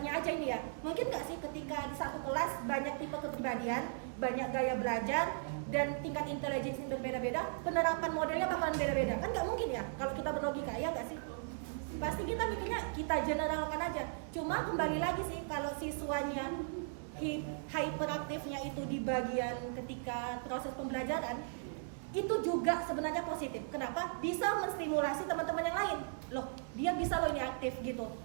aja ini ya, mungkin nggak sih ketika di satu kelas banyak tipe kepribadian, banyak gaya belajar, dan tingkat intelijensi yang berbeda-beda, penerapan modelnya bakalan beda-beda, kan nggak mungkin ya kalau kita berlogika, ya nggak sih? Pasti kita mikirnya kita generalkan aja. Cuma kembali lagi sih, kalau siswanya hyperaktifnya itu di bagian ketika proses pembelajaran, itu juga sebenarnya positif. Kenapa? Bisa menstimulasi teman-teman yang lain. Loh, dia bisa loh ini aktif gitu.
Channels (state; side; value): silent; left; digital silence